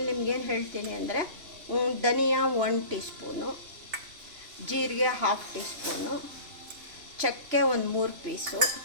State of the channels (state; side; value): late; left; 2.9 ms